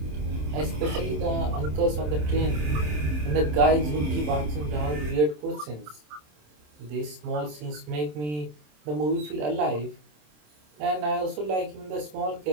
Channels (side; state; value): left; late; 27 ms